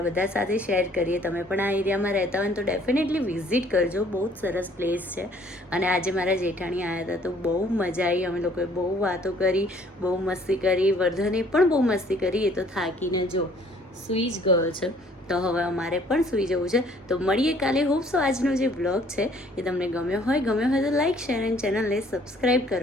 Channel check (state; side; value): normal; both; correlation 0.59